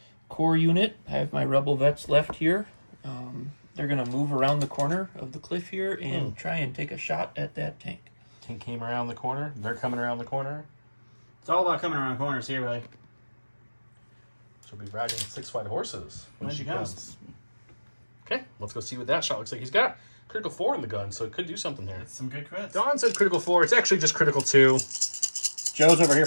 Core unit, I have my rebel vets left here. They're going to move around the corner of the cliff here and try and take a shot at that tank. Tank came around the corner. They're coming around the corner. It's all about coming around corners here, really. She'll be riding 6 white horses when When she she comes. comes. Okay, let's go see what that shot looks like. He's got critical 4 in the gun, so it could do something there. Some good crits. Don said critical 4. It's actually just critical 2. Joe's over here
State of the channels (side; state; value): both; inverted; correlation -1.00